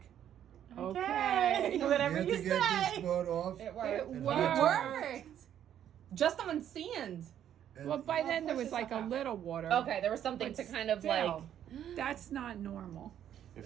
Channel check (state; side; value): quieter; left; 10.2 dB